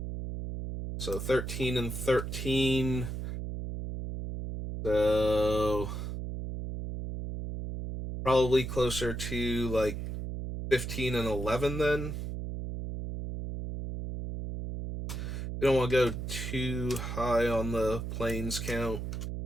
So 13 and 13. So probably closer to like 15 and 11 then. We don't want to go too high on the planes count.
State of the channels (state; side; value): noise; right; hum, 5 dB below the sound